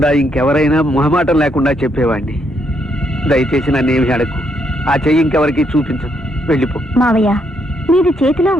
ఇంకెవరైనా మొహమాటం లేకుండా చెప్పేవాడిని. దయచేసి నన్నేమి అడకు. ఆ చెయ్యి ఇంకెవరికి చూపించదు. వెళ్ళిపో. మావయ్య, మీది చేతిలో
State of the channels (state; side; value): normal; both; correlation 0.75